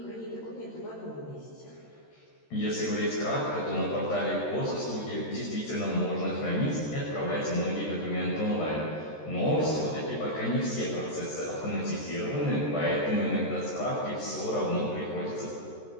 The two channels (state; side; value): late; right; 13 ms